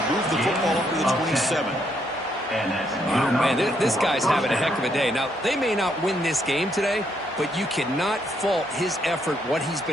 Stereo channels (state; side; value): normal; both; correlation 0.74